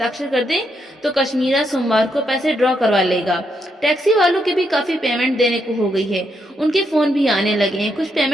कर दें तो कश्मीरा सोमवार को पैसे ड्रॉ करवा लेगा। टैक्सी वालों की भी काफी पेमेंट देने को हो गई है, उनके फोन भी आने लगे हैं, कुछ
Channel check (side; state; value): both; normal; correlation 0.79